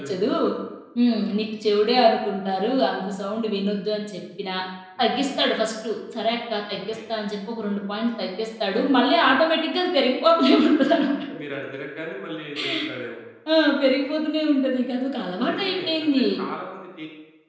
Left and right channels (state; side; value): identical; both; correlation 1.00